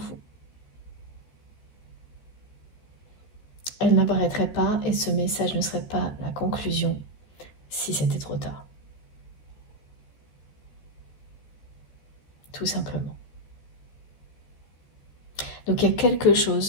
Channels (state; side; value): late; right; 14 ms